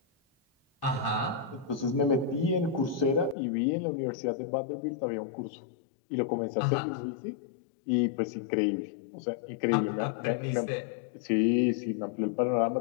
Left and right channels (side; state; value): right; drops out; at 3.4 s